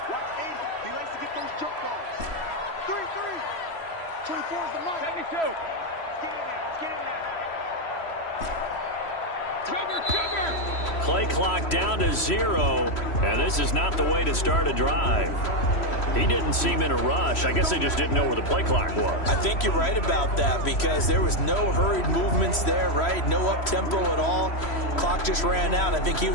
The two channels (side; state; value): right; late; 3.0 ms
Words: 80. He likes to get those jump balls. 3-3. 24 is the mark. 72. Let's get in there. Let's get in there. Cover. Play clock down to 0, and this is not the way to start a drive. He didn't seem in a rush. I guess they just didn't know where the play clock was. I think you're right about that because there was no hurried movements there, right? No up-tempo at all. Clock just ran out. I think he